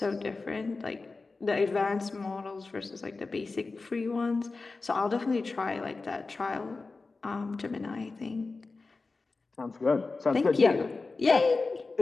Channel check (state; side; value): quieter; right; 3.8 dB